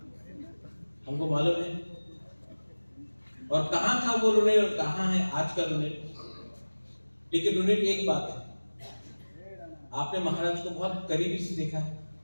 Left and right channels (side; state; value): both; inverted; correlation -1.00